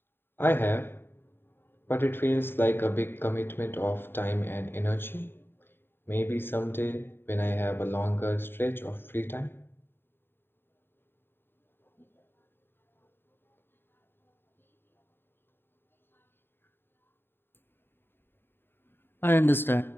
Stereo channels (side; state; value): right; late; 0.10 ms